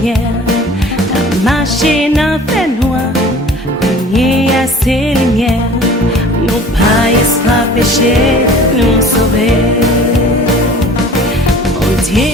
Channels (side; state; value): both; normal; correlation 0.45